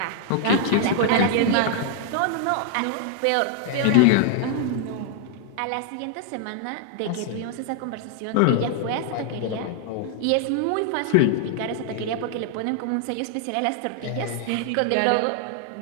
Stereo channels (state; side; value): different; both; correlation 0.00